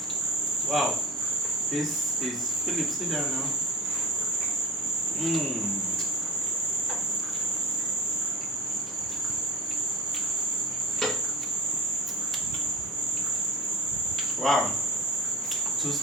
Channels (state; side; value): normal; both; correlation 0.38